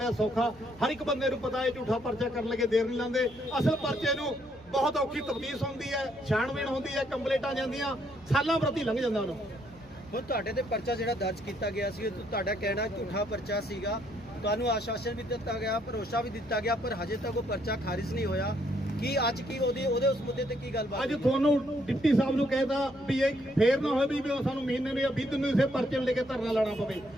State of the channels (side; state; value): left; noise; hum, 24 dB below the sound